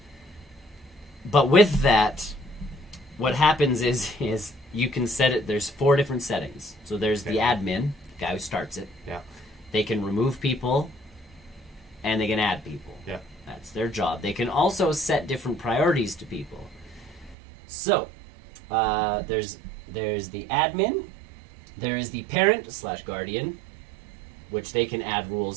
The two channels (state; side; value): drops out; left; at 17.4 s